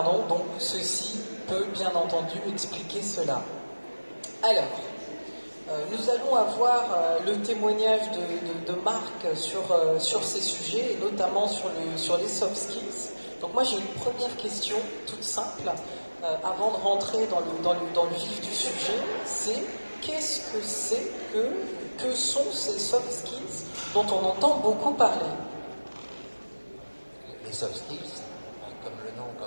donc ceci peut bien entendu expliquer cela. Alors, nous allons avoir le témoignage de Marc sur ces sujets, et notamment sur les soft skills. Donc moi j'ai une première question toute simple, avant de rentrer dans le vif du sujet, c'est qu'est-ce que c'est que sont ces soft skills dont on entend beaucoup parler? Les soft skills, comme le nom,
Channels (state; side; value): inverted; both; correlation -1.00